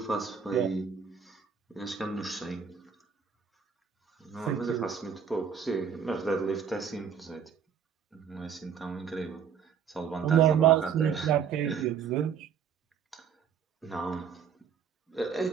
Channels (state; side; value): quieter; left; 7.2 dB